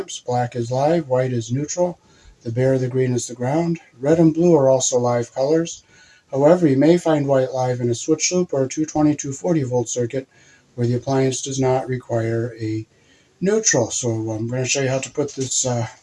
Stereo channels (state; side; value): identical; both; correlation 1.00